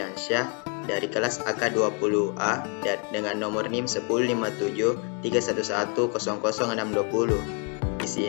dari kelas AK20A dan dengan nomor NIM 105731100620. Di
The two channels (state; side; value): quieter; right; 37.0 dB